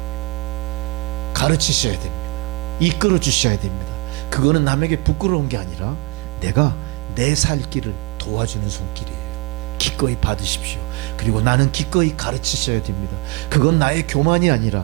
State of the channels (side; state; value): left; quieter; 25.9 dB